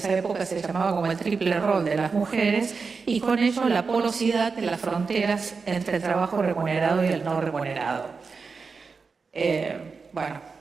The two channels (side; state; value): left; quieter; 4.8 dB